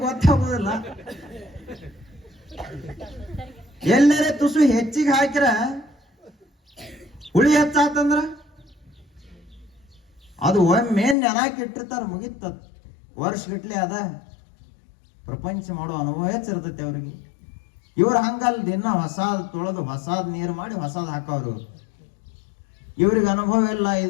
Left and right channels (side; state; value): right; drops out; at 11.2 s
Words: ಗೊತ್ತಾಗೋದಿಲ್ಲ. ಎಲ್ಲರೇ ತುಸು ಹೆಚ್ಚಿಗೆ ಹಾಕಿರ ಹುಳಿ ಹೆಚ್ಚಾತಂದ್ರ ಅದು ಒಮ್ಮೆ ನೆನಾಕಿ ಇಟ್ಟಿರ್ತಾರ, ಮುಗಿತದ. ವರ್ಷಗಟ್ಲೆ ಅದ ಪ್ರಪಂಚ ಮಾಡೋ ಅನುಭವ ಹೆಚ್ಚಿರ್ತೈತಿ ಅವ್ರಿಗೆ. ಇವ್ರ ಹಂಗಲ್ ದಿನ ಹೊಸಾದ್ ತೊಳೆದು ಹೊಸಾದ್ ನೀರು ಮಾಡಿ ಹೊಸಾದ್ ಹಾಕವ್ರು. ಇವ್ರಿಗೆ ಅನುಭವ ಇಲ್ಲ.